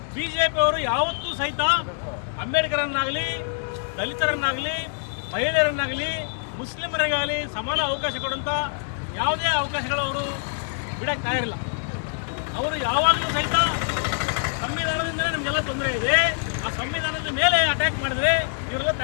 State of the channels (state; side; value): silent; right; digital silence